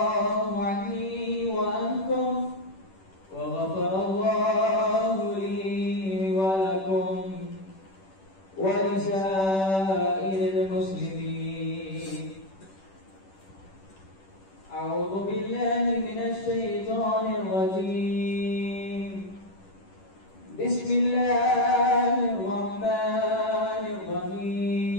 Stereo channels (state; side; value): late; right; 10 ms